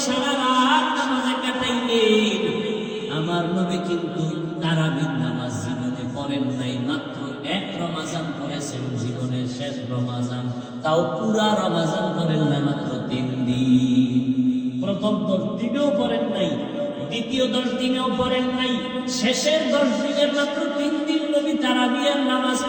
সারা রাত নামাজে কাটাইলেন। আমার নবী কিন্তু তারাবির নামাজ জীবনে পড়েন নাই, মাত্র এক রমাজান পড়েছেন, জীবনের শেষ রমাজান। তাও পুরা রমাজান পড়েন না, মাত্র 3 দিন। প্রথম 10 দিনেও পড়েন নাই, দ্বিতীয় 10 দিনেও পড়েন নাই, শেষের 10 দিনের মাত্র 3 দিন নবী তারাবির নামাজ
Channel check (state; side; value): identical; both; correlation 1.00